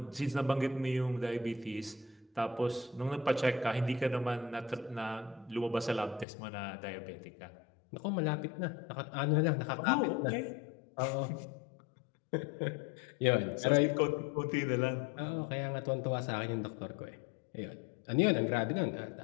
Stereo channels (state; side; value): drops out; right; at 6.2 s